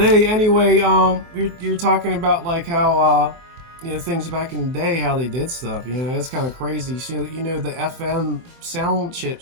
anyway, you're talking about like how things back in the day, how they did stuff. It's kind of crazy. So, the FM sound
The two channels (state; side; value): late; left; 23 ms